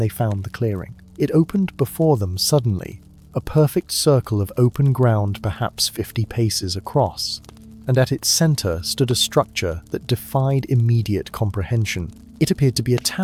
found the clearing. It opened before them suddenly, a perfect circle of open ground perhaps 50 paces across, and at its center stood a structure that defied immediate comprehension. It appeared to be a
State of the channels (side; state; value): both; identical; correlation 1.00